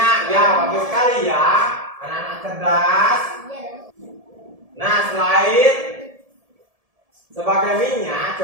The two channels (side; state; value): left; late; 1.7 ms